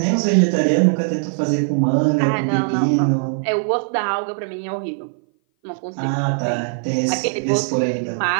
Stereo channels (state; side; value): silent; left; 58 dB below the other